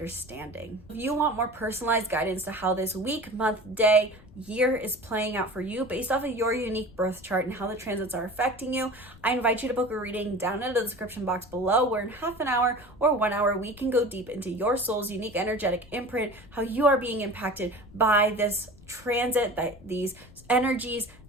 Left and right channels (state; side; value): noise; left; rumble, 22 dB below the sound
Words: If you want more personalized guidance to how this week, month, day, year is playing out for you based off of your unique birth chart and how the transits are affecting you, I invite you to book a reading down in the description box below, where in half an hour or 1 hour, we can go deep into your soul's unique energetic imprint, how you are being impacted by this transit, these energies,